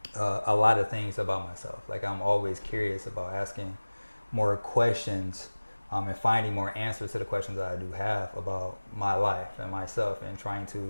a lot of things about myself. Like I'm always curious about asking more questions and finding more answers to the questions that I do have about my life and myself and trying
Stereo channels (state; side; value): inverted; both; correlation -1.00